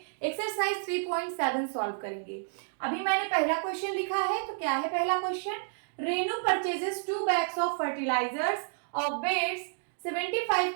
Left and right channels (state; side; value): silent; left; digital silence